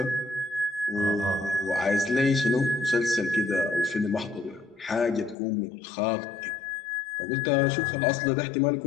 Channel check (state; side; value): drops out; right; at 5.4 s